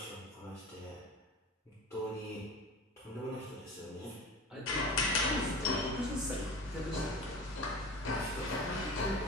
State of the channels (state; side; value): normal; both; correlation 0.34